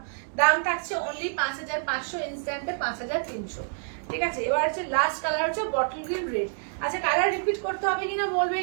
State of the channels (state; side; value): silent; left; 60 dB below the other